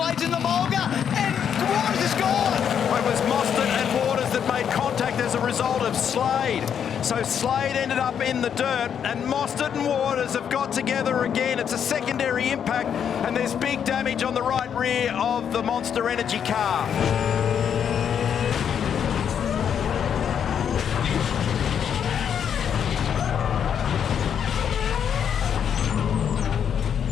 in the mulga, and Waters is gone. It was Mostert and Waters that made contact as a result of Slade. So Slade ended up in the dirt, and Mostert and Waters have got together again. It's a secondary impact, and there's big damage on the right rear of the Monster Energy car.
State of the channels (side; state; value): right; quieter; 8.2 dB